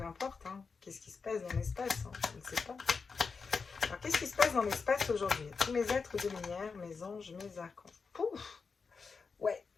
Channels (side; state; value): right; quieter; 5.0 dB